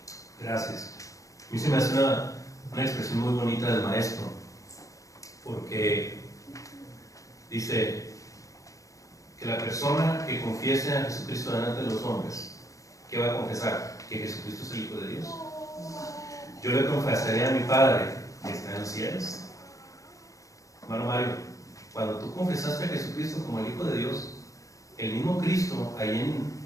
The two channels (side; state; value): right; late; 0.16 ms